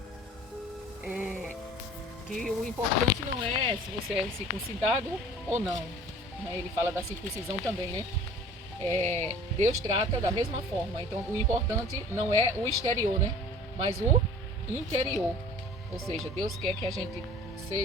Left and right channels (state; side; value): normal; both; correlation 0.46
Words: que o importante não é se você é circuncidado ou não, né? Ele fala da circuncisão também, né? Deus trata da mesma forma, então o importante não é o exterior, né, mas o interior, ou seja, Deus quer que a gente